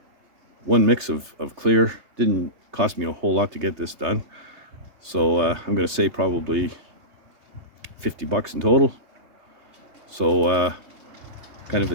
one mix of clear. Didn't cost me a whole lot to get this done. So I'm gonna say probably 50 bucks in total. So kind of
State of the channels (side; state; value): left; late; 3.3 ms